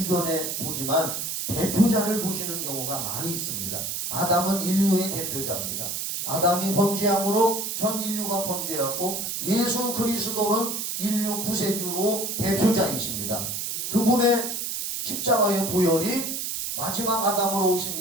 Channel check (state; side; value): noise; right; hiss, 3 dB below the sound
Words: 보지만 대표자를 보시는 경우가 많이 있습니다. 아담은 인류의 대표자입니다. 아담이 범죄함으로 전 인류가 범죄했고 예수 그리스도는 인류 구세주로 대표자이십니다. 그분의 십자가의 보혈이 마지막 아담으로 오신